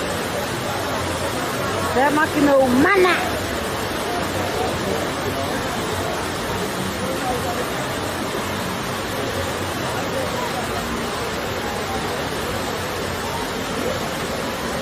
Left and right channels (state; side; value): identical; both; correlation 1.00